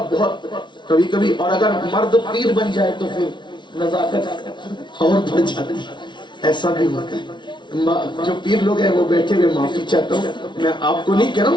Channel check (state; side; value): late; right; 0.23 ms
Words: بہت کبھی کبھی، اور اگر مرد پیر بن جائے تو پھر نزاکت اور بڑھ جاتی ہے، ایسا بھی ہوتا ہے۔ جو پیر لوگ ہیں وہ بیٹھے ہوئے معافی چاہتا ہوں، میں آپ کو نہیں کہہ رہا